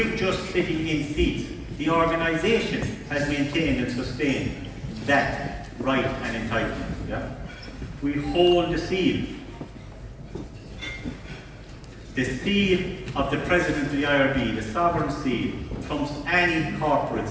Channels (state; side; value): identical; both; correlation 1.00